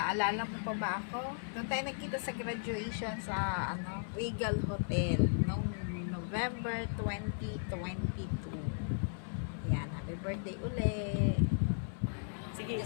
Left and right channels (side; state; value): right; silent; 54 dB below the other